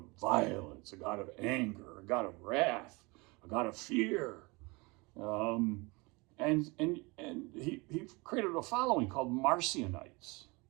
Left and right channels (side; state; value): left; quieter; 26.2 dB